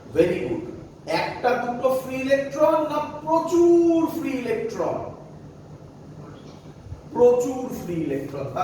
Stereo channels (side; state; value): both; identical; correlation 1.00